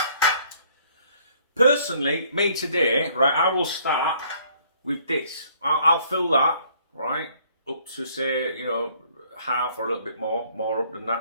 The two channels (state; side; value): inverted; both; correlation -0.61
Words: Personally, me today, right, I will start with this. I'll fill that, right, up to say, you know, half or a little bit more up than